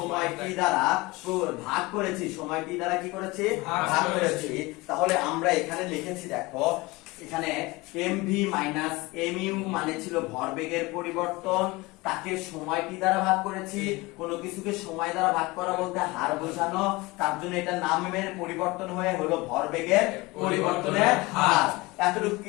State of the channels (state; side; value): quieter; right; 22.7 dB